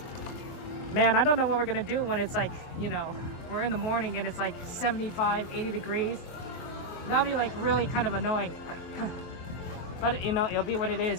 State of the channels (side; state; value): right; late; 23 ms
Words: Man, I don't know what we're gonna do when it's like, you know, we're in the morning and it's like 75, 80 degrees. That'll be like really kind of annoying. But, you know, it'll be what it